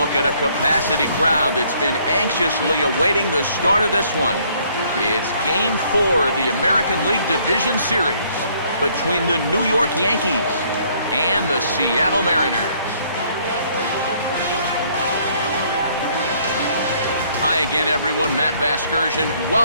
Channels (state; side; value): inverted; both; correlation -0.64